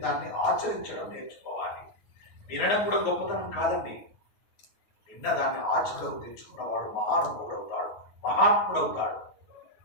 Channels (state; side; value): late; right; 9.5 ms